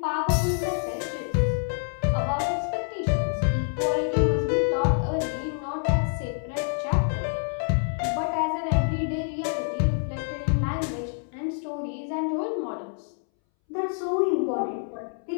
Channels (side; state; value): right; silent; 60 dB below the other